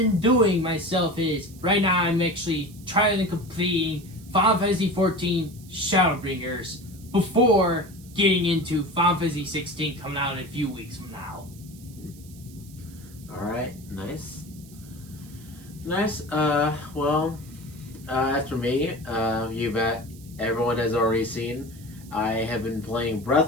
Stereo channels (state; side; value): noise; right; hiss, 22 dB below the sound